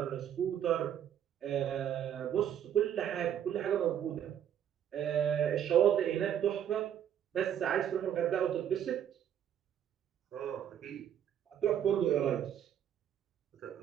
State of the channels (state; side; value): quieter; left; 9.8 dB